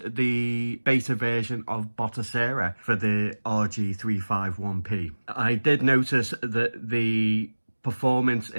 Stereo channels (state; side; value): inverted; both; correlation -1.00